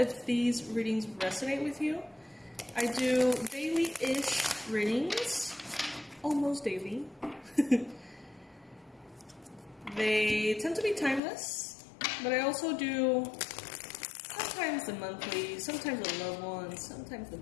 these readings resonate with you. I do daily-ish readings, almost daily. They tend to be timeless, but I also do sometimes the monthly, sometimes the loved ones, sometimes the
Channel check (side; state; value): right; drops out; at 11.2 s